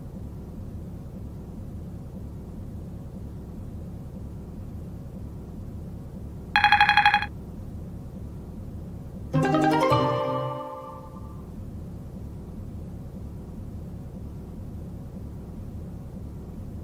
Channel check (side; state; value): both; identical; correlation 1.00